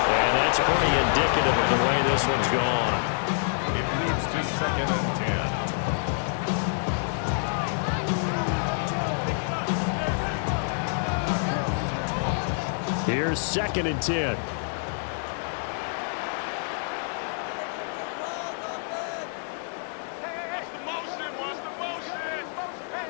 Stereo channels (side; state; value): right; silent; digital silence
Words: And that's pretty indicative of the way this one's gone. It leads to 2nd and 10. Here's 2nd and 10.